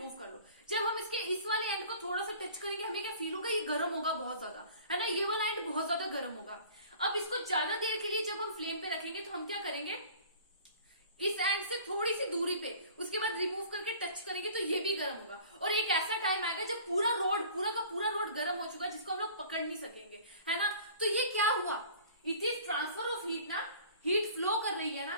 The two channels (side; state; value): both; inverted; correlation -0.47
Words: कर लो। जब हम इसके इस वाले एंड को थोड़ा सा टच करेंगे, हमें क्या फील होगा, ये गर्म होगा बहुत ज्यादा, है ना। ये वाला एंड बहुत ज्यादा गर्म होगा। अब इसको ज्यादा देर के लिए जब हम फ्लेम पे रखेंगे तो हम क्या करेंगे, इस एंड से थोड़ी सी दूरी पे, उसके बाद रिमूव करके टच करेंगे तो ये भी गर्म होगा। और एक ऐसा टाइम आएगा जब पूरा का पूरा रोड गर्म हो चुका है, जिसको हम लोग पकड़ नहीं सकेंगे, है ना। तो ये क्या हुआ, it is transfer of heat ना, हीट फ्लो कर रही है ना।